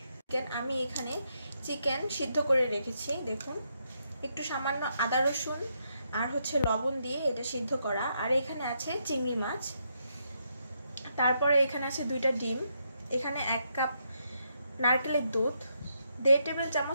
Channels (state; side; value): inverted; both; correlation -0.79